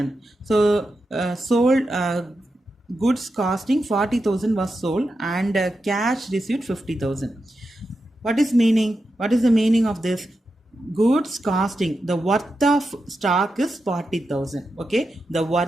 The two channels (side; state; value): both; normal; correlation 0.89